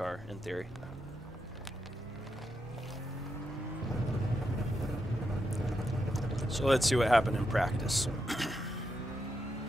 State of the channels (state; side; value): normal; both; correlation 0.84